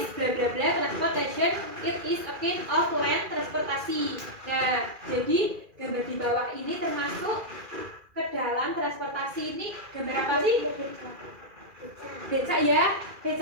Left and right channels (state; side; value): late; left; 2.4 ms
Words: bla bla bla transportation. It is a kind of land transportasi. Nah, jadi gambar di bawah ini termasuk ke dalam transportasi. Ini gambar apa sih? Beca ya.